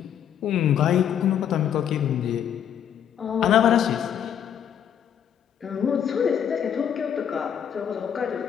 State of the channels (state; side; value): quieter; right; 9.1 dB